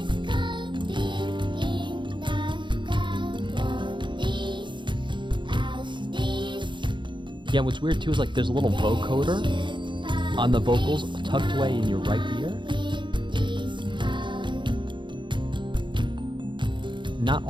Yeah, what's weird too is like there's a little vocoder on the vocals tucked away in your right ear. Not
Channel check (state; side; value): late; left; 0.23 ms